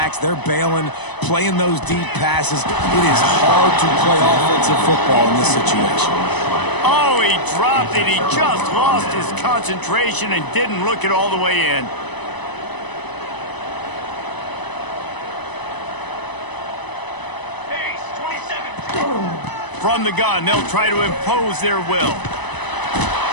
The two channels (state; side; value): late; right; 1.0 ms